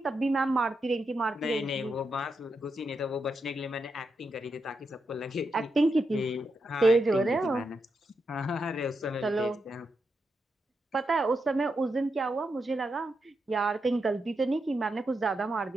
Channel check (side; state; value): both; normal; correlation 0.85